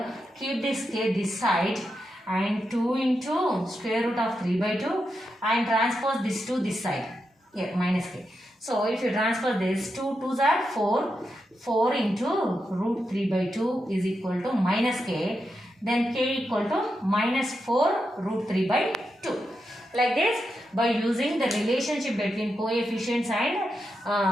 keep this k this side. And 2 into square root of 3 by 2 and transpose this to this side. Here minus k. So if you transpose this, 2 2s are 4. 4 into root 3 by 2 is equal to minus k. Then k equal to minus 4 root 3 by 2. Like this, by using the relationship between coefficients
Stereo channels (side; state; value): both; normal; correlation 0.86